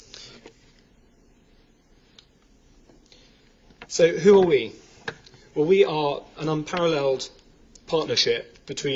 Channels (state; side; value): identical; both; correlation 1.00